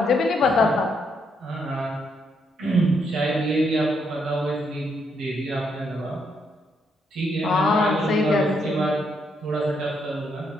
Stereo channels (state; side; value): normal; both; correlation 0.76